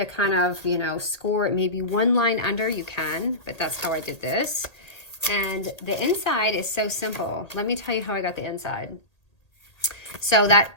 kind of, you know, score it maybe one line under, you can, but that's how I did this. And the inside is so simple. Let me tell you how I got the inside. So that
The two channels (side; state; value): right; late; 1.8 ms